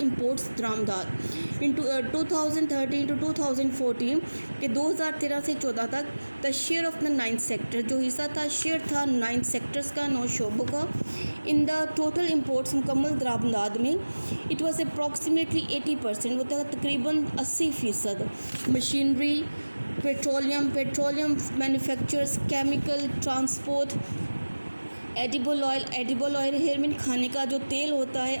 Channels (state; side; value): inverted; both; correlation -1.00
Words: दरामदाद. इन 2013 टू 2014 के 2013 से 14 तक the share of the 9 sector, जो हिस्सा था शेयर था 9 सेक्टर्स का, 9 शोबों का इन द टोटल इम्पोर्ट्स मुकम्मल दरामदाद में. इट वॉज अप्रॉक्सीमेटली 80%, वो था तकरीबन 80%. Machinery, petroleum manufacturers, chemical, transport, edible oil here mean खाने का जो तेल होता है,